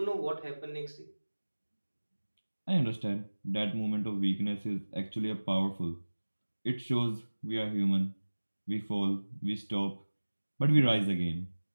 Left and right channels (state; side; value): inverted; both; correlation -1.00